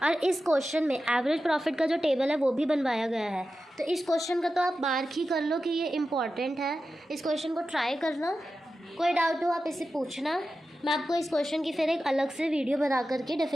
और इस क्वेश्चन में एवरेज प्रॉफिट का जो टेबल है वो भी बनवाया गया है। तो इस क्वेश्चन का तो आप मार्क ही कर लो कि ये इम्पॉर्टेंट है, इस क्वेश्चन को ट्राई करना। कोई डाउट हो आप इससे पूछना, मैं आपको इस क्वेश्चन की फिर एक अलग से वीडियो बना करके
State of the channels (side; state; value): both; normal; correlation 0.92